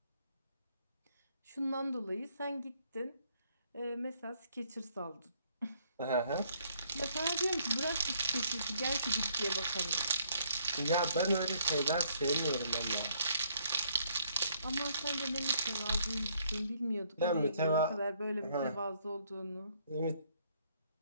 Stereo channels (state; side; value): inverted; both; correlation -0.67